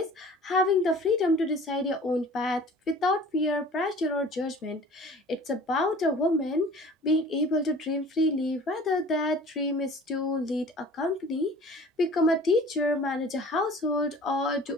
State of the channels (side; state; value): both; normal; correlation 0.45